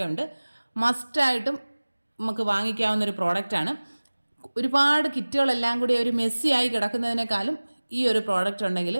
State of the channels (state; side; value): inverted; both; correlation -1.00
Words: ഉണ്ട്. മസ്റ്റായിട്ടും നമുക്ക് വാങ്ങിക്കാവുന്നൊരു പ്രോഡക്റ്റാണ്. ഒരുപാട് കിറ്റുകളെല്ലാം കൂടി ഒരു മെസ്സിയായി കിടക്കുന്നതിനേക്കാളും ഈ ഒരു പ്രോഡക്റ്റ് ഉണ്ടെങ്കിൽ